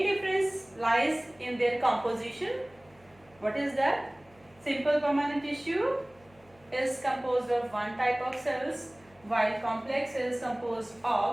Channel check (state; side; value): noise; left; hum, 29 dB below the sound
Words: difference lies in their composition. What is that? Simple permanent tissue is composed of one type of cells, while complex is composed